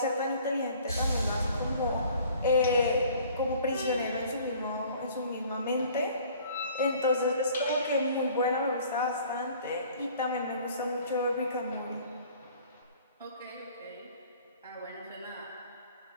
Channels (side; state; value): both; inverted; correlation -0.53